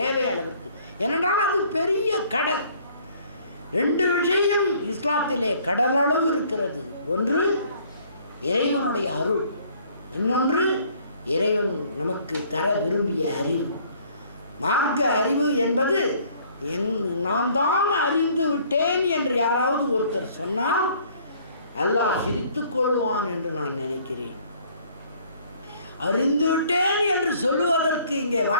அளவிற்கு. ஏனென்றால் அது பெரிய கடல். ரெண்டு விஷயம் இஸ்லாத்திலே கடலளவு இருக்கிறது. ஒன்று இறைவனுடைய அருள், இன்னொன்று இறைவன் நமக்கு தர விரும்பிய அறிவு. மார்க்க அறிவு என்பது நான் தான் அறிந்து விட்டேன் என்று யாராவது ஒருத்தர் சொன்னால் அல்லாஹ் சிரித்துக் கொள்வான் என்று நான் நினைக்கிறேன். அறிந்து விட்டேன் என்று சொல்லுவதற்கு இங்கே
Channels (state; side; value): inverted; both; correlation -0.59